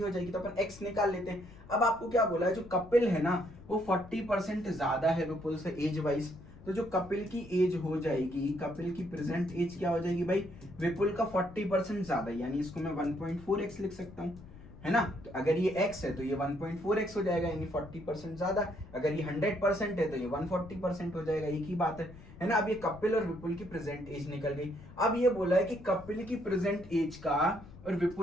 हो जाएगी। तो अपन x निकाल लेते हैं। अब आपको क्या बोला है, जो कपिल है ना वो 40% ज्यादा है विपुल से एज वाइज, तो जो कपिल की एज हो जाएगी, कपिल की प्रेजेंट एज क्या हो जाएगी भाई, विपुल का 40% ज्यादा, यानी इसको मैं 1.4x लिख सकता हूँ, है ना। तो अगर ये x है तो ये 1.4x हो जाएगा, यानी 40% ज्यादा। अगर ये 100% है तो ये 140% हो जाएगा, एक ही बात है ना। अब ये कपिल और विपुल की प्रेजेंट एज निकल गई। अब ये बोला है कि कपिल की प्रेजेंट एज का और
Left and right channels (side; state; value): left; noise; rumble, 18 dB below the sound